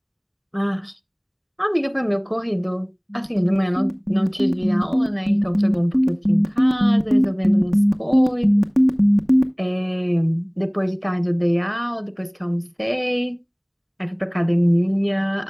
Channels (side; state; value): both; identical; correlation 1.00